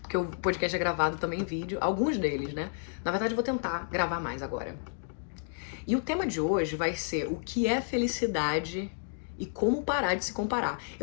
Porque o podcast é gravado também em vídeo, alguns deles, né? Na verdade, eu vou tentar gravar mais agora. E o tema de hoje vai ser o que é felicidade e como parar de se comparar.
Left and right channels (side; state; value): right; silent; digital silence